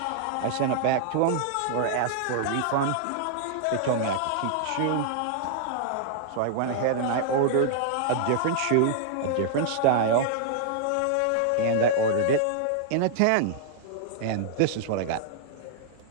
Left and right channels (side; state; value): both; different; correlation -0.01